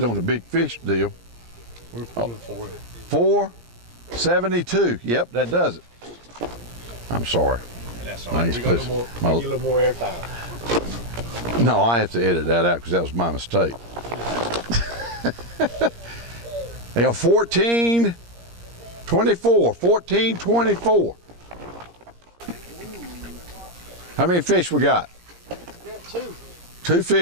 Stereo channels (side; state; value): left; late; 17 ms